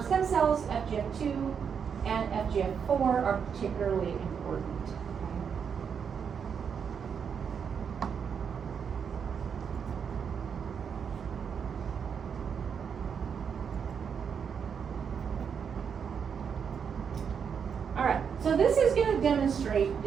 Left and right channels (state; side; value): quieter; left; 6.9 dB